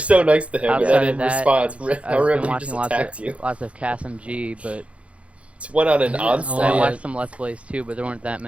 nice to him, and Outside then of in that, response, I I've been remember he watching just lots attacked you. of CasmG, but Just went on an Yeah, onslaught. I yeah. watched some Let's Plays too, but there weren't that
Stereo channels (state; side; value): late; left; 0.062 ms